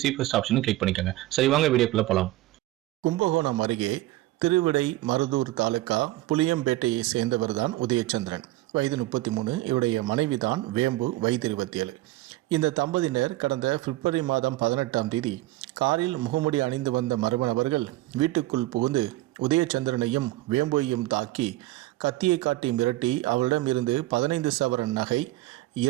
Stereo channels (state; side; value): quieter; left; 17.4 dB